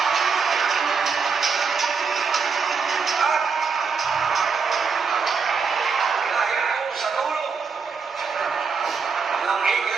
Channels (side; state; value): left; quieter; 5.4 dB